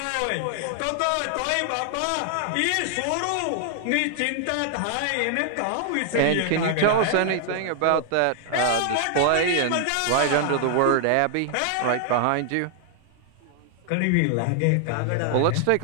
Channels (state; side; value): different; both; correlation 0.00